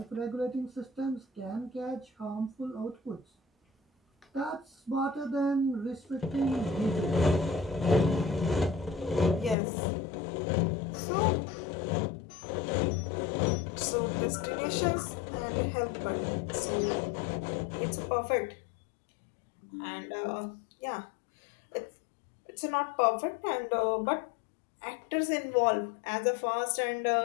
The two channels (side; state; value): right; drops out; at 9.6 s